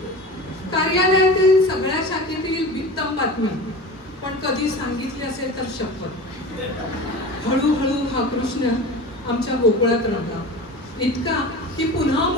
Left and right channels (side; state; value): both; normal; correlation 0.33